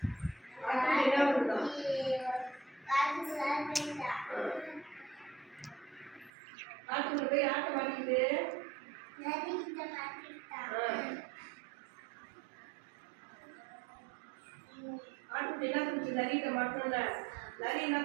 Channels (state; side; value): drops out; left; at 6.3 s